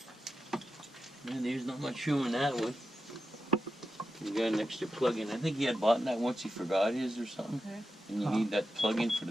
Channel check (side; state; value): both; normal; correlation 0.89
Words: Yeah, there's not much room in that one. You got an extra plug-in. I think he had bought that once he forgot his or something. Okay. And you need that plug-in for